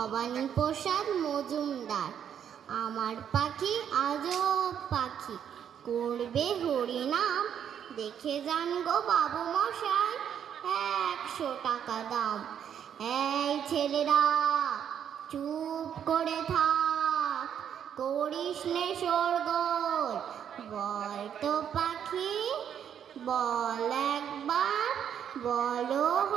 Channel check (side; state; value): left; quieter; 8.8 dB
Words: মজুমদার। আমার পাখি আজব পাখি, করবে হরিনাম, দেখে যান গো বাবু মশাই, 100 টাকা দাম। এই ছেলেরা চুপ করে থাক, করিস নে শোরগোল, বল তো পাখি বল একবার, বলো